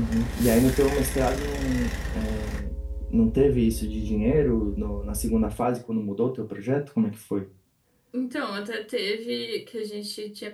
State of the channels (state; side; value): identical; both; correlation 1.00